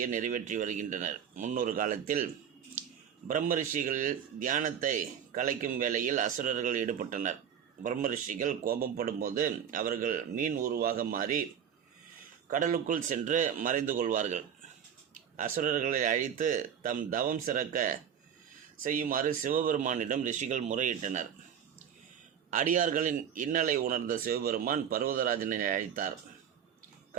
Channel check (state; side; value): quieter; left; 8.5 dB